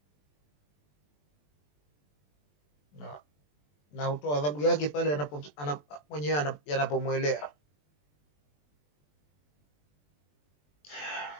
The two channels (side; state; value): right; late; 20 ms